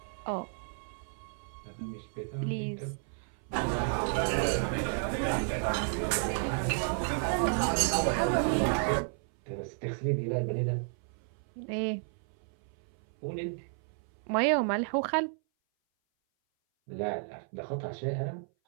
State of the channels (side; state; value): left; silent; 56 dB below the other